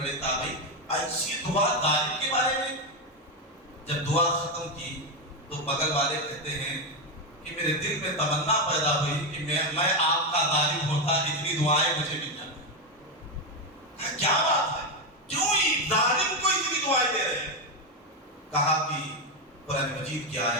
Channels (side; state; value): both; normal; correlation 0.09